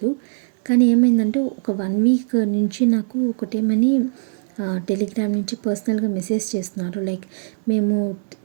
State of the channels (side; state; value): left; silent; digital silence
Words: కానీ ఏమైందంటే ఒక 1 వీక్ నుంచి నాకు ఒకటేమని టెలిగ్రామ్ నుంచి పర్సనల్‌గా మెసేజ్ చేస్తున్నారు. లైక్ మేము